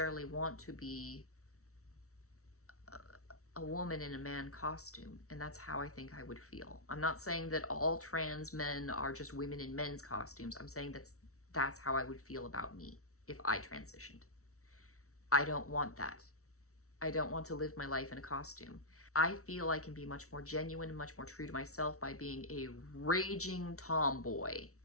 want to be a woman in a man costume, and that's how I think I would feel. I'm not saying that all trans men are just women in men's costumes. I'm saying that's how I would feel about me if I transitioned. I don't want that. I don't want to live my life in a costume. I feel I can be much more genuine and much more true to myself by being a raging tomboy.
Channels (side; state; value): right; late; 0.64 ms